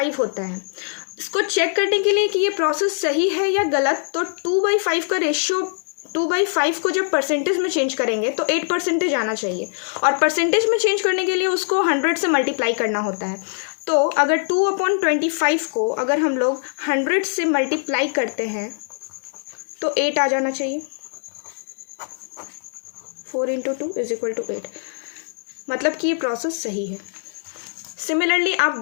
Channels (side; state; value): right; silent; digital silence